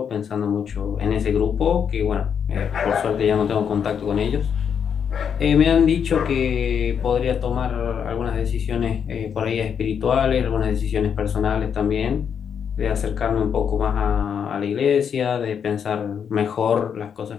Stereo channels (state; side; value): quieter; right; 7.5 dB